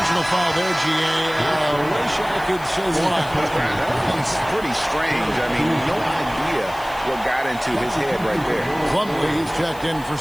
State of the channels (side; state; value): left; noise; hiss, 20 dB below the sound